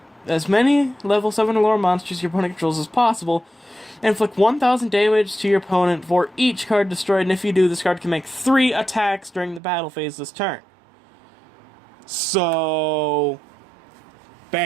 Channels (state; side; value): drops out; left; at 9.6 s